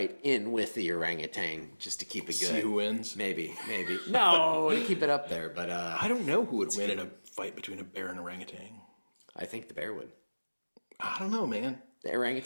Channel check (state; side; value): inverted; both; correlation -1.00